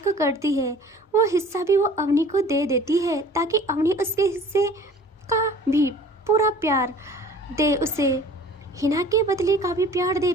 करती है वो हिस्सा भी वो अवनी को दे देती है, ताकि अवनी उसके हिस्से का भी पूरा प्यार दे उसे। हिना के बदले का भी प्यार दे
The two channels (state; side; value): normal; both; correlation 0.47